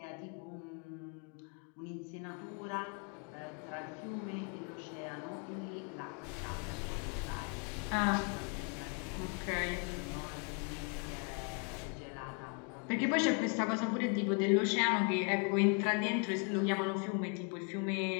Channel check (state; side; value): quieter; right; 36.2 dB